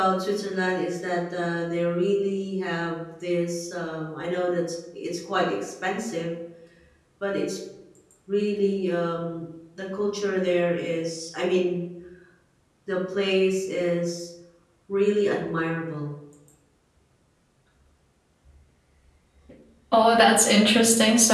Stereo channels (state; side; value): identical; both; correlation 1.00